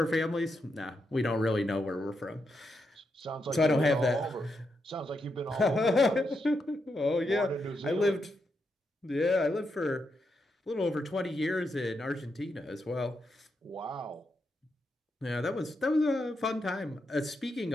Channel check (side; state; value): both; normal; correlation 0.83